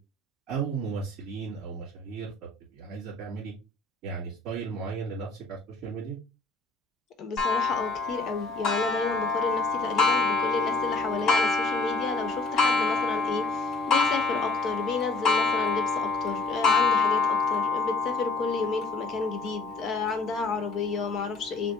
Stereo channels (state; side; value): quieter; right; 3.6 dB